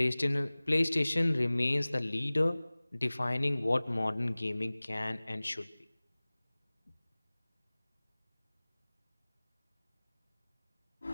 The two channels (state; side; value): inverted; both; correlation -1.00